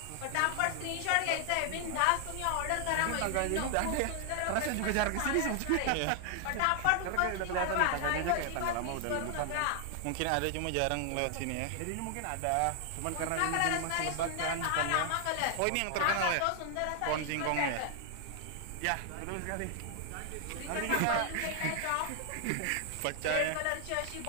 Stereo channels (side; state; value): both; different; correlation 0.00